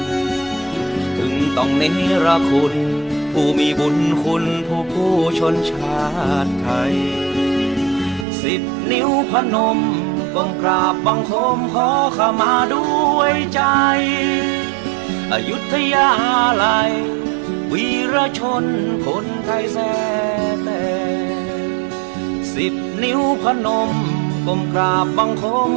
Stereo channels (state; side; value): drops out; left; at 8.2 s